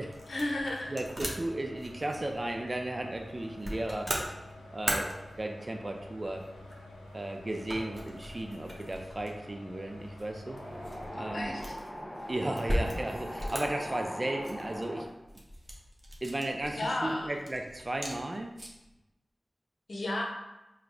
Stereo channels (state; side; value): normal; both; correlation 0.97